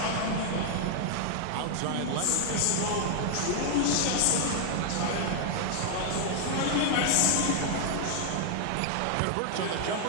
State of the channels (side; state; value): both; different; correlation 0.00